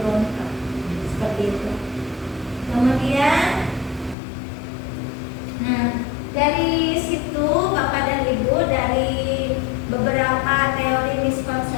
seperti itu. Kemudian, nah dari situ Bapak dan Ibu, dari beberapa teori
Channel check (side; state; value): right; drops out; at 4.2 s